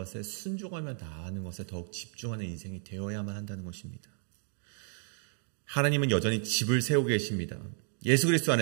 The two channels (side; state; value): left; silent; 56 dB below the other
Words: 순종하며 나아가는 것에 더욱 집중하는 인생이 되어야만 한다는 것입니다. 하나님은 여전히 집을 세우고 계십니다. 예수 그리스도